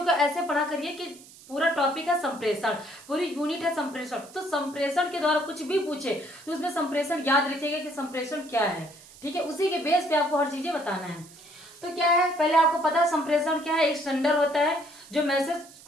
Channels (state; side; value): noise; right; hiss, 21 dB below the sound